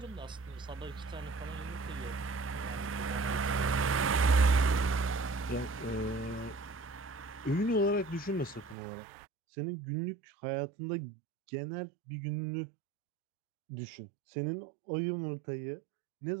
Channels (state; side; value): drops out; left; at 8.8 s